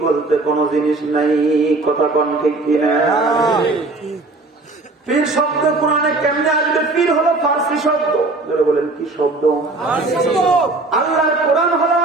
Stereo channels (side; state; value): left; quieter; 3.3 dB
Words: বলতে কোনো জিনিস নাই। কথা কোন ঠিক কিনা? পীর শব্দ কোরআনে কেমনে আসবে? পীর হলো ফার্সি শব্দ। বলেন কি শব্দ? আল্লাহর কোরআন হলো